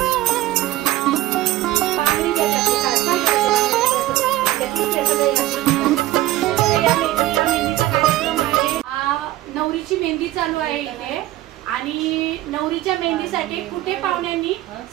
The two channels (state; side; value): quieter; left; 16.0 dB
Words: नवरीची मेहंदी चालू आहे इथे आणि नवरीच्या मेहंदीसाठी कुठे पाहुण्यांनी